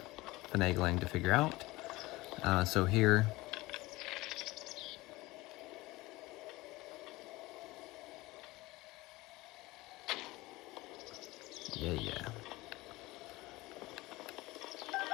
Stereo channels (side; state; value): right; quieter; 20.4 dB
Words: finagling to figure out. So here, yeah.